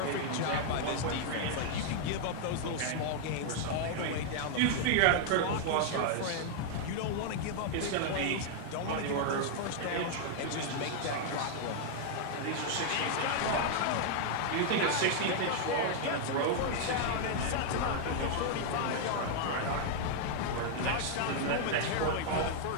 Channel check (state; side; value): different; both; correlation 0.00